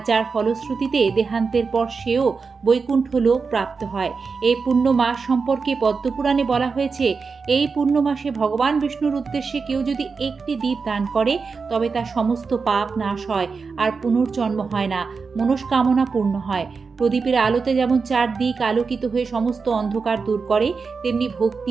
যার ফলশ্রুতিতে দেহান্তের পর সেও বৈকুণ্ঠ লোক প্রাপ্ত হয়। এই পূর্ণ মাস সম্পর্কে পদ্মপুরাণে বলা হয়েছে, এই পূর্ণ মাসে ভগবান বিষ্ণুর উদ্দেশ্যে কেউ যদি একটি দ্বীপ দান করে তবে তার সমস্ত পাপ নাশ হয় আর পুনর্জন্ম হয় না, মনস্কামনা পূর্ণ হয়। প্রদীপের আলোতে যেমন চারদিক আলোকিত হয়ে সমস্ত অন্ধকার দূর করে, তেমনি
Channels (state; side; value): quieter; left; 4.9 dB